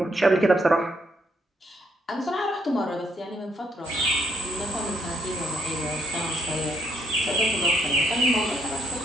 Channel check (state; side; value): normal; both; correlation 0.72